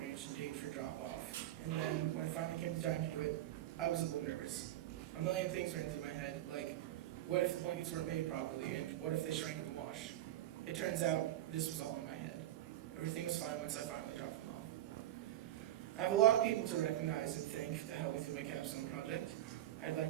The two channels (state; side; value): quieter; left; 13.5 dB